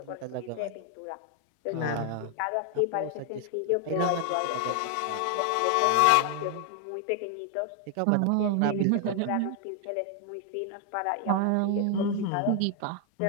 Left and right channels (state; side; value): different; both; correlation 0.00